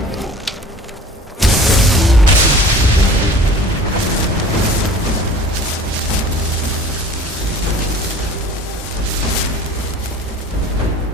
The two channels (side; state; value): both; normal; correlation 0.45